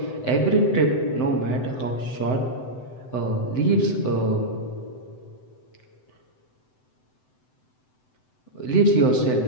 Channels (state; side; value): late; right; 7.9 ms